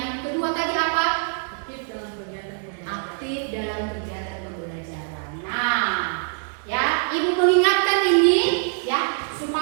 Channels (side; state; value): left; silent; 63 dB below the other